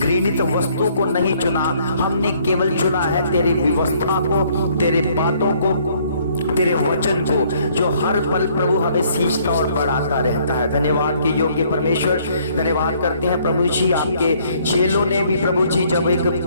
वस्तु को नहीं चुना, हमने केवल चुना है तेरी व्यवस्था को, तेरे बातों को, तेरे वचन को, जो हर पल प्रभु हमें सींचता और बढ़ाता रहता है। धन्यवाद के योग्य परमेश्वर, धन्यवाद करते हैं प्रभु जी। आपके चेलों ने भी प्रभु जी जब एक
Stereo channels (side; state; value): both; inverted; correlation -0.63